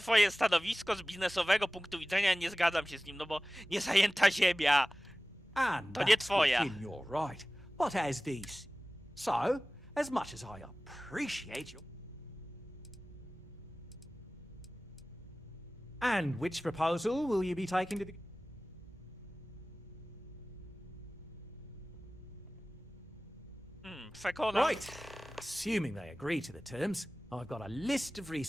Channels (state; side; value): normal; both; correlation 0.97